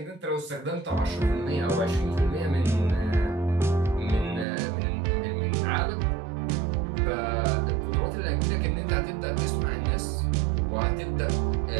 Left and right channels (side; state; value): left; drops out; at 4.5 s